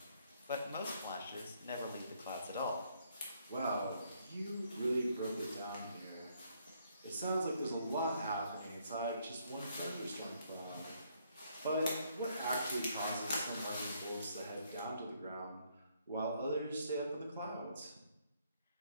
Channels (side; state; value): both; inverted; correlation -0.70